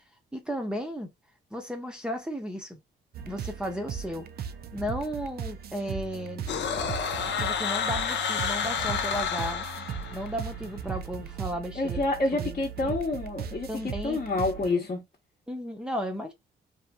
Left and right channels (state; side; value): normal; both; correlation 0.44